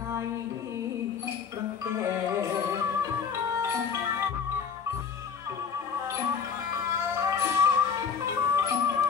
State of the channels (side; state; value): right; quieter; 6.5 dB